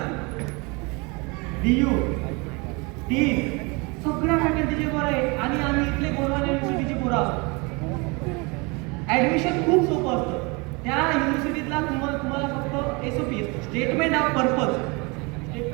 DU, टी सगळ्या फॅकल्टीचे पोरं आहे आणि आम्ही इथले गोंडवाना युनिव्हर्सिटीचे पोरं आहोत. ॲडमिशन खूप सोपं असतं. त्या युनिव्हर्सिटीतला तुम्हाला फक्त SOP statement of purpose.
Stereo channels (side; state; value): left; quieter; 28.3 dB